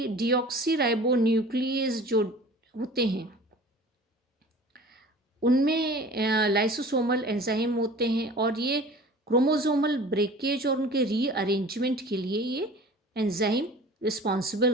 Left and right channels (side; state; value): both; normal; correlation 0.43